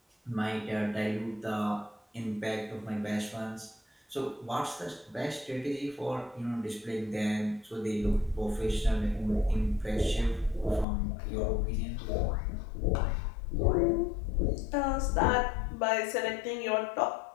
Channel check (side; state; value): right; drops out; at 10.9 s